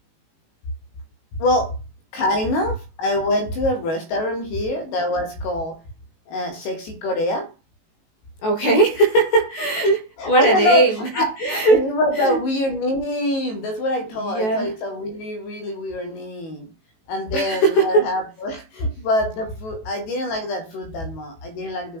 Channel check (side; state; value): right; late; 18 ms